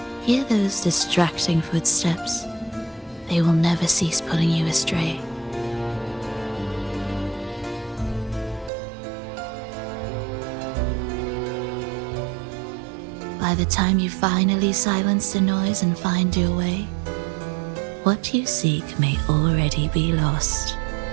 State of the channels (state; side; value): drops out; left; at 8.7 s